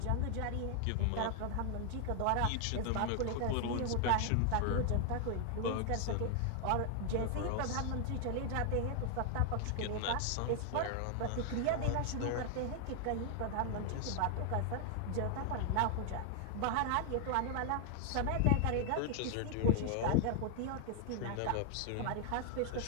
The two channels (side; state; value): both; different; correlation 0.00